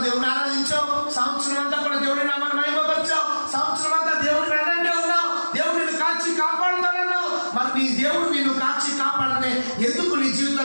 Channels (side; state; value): both; inverted; correlation -1.00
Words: దేవుడిని ఆరాధించావు, సంవత్సరం అంతా కూడా దేవుడి నామాన్ని మహిమపరిచావు, సంవత్సరం అంతా దేవుడిని వెన్నంటే ఉన్నావు, దేవుడు నిన్ను కాచి కాపాడుతానన్నావు. మరి నీ దేవుడు నిన్ను కాచి కాపాడితే ఎందుకు నీ